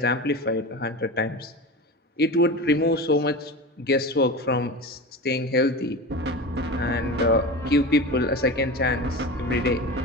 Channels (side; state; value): both; normal; correlation 0.28